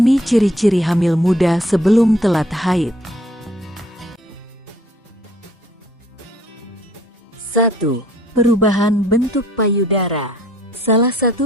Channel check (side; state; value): both; normal; correlation 0.60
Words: ciri-ciri hamil muda sebelum telat haid. 1. Perubahan bentuk payudara. Salah